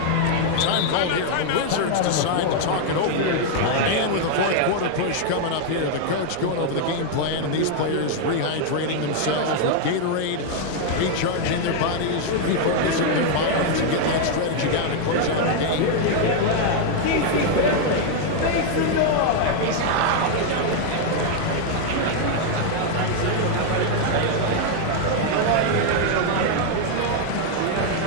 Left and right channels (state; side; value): different; both; correlation 0.00